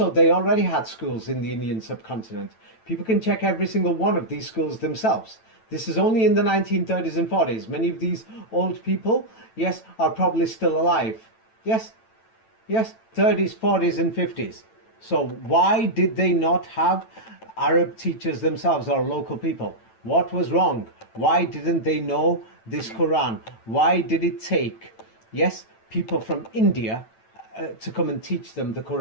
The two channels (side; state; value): right; late; 9.0 ms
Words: they already had schools in the Indian subcontinent. People can check every single one of these schools themselves. This is only in the 1930s and 40s. Many of these old people, yes, are probably still alive. Yes, yes, 30s, 40s, and 50s. So why did they not have Arab teachers themselves or local people? What was wrong? Why didn't they know this Quran? Why did it take, yes, people from India to come and teach them the